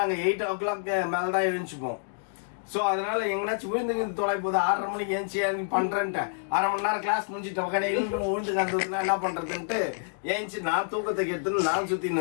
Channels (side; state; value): right; silent; digital silence